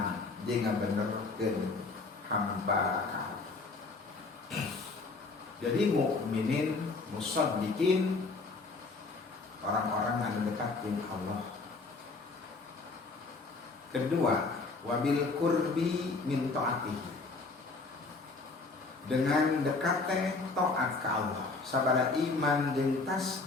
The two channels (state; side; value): quieter; right; 3.8 dB